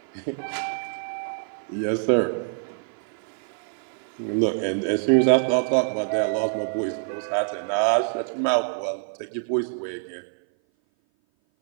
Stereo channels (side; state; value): left; silent; 57 dB below the other